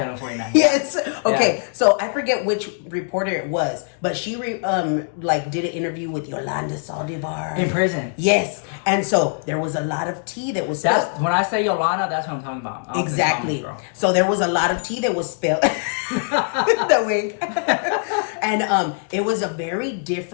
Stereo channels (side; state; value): right; silent; digital silence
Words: 49. Yes. Okay. Yeah. So I forget which reporter it was, but she did an interview with Yolanda Saldivar in prison. Yes. And so there was a lot of tea that was spilled. When I say Yolanda, that's what I'm talking about. Exactly. So there was a lot of tea that was spilled. The wig. And it was a very